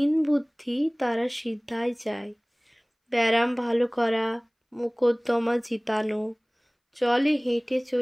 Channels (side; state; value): both; identical; correlation 1.00